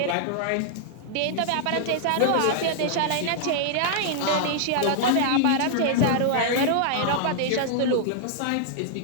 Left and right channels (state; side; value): different; both; correlation -0.01